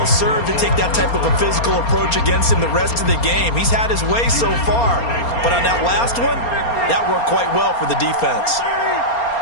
served to take that type of a physical approach against him the rest of the game. He's had his way so far. But on that last one, that worked quite well for the defense.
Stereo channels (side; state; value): right; late; 4.3 ms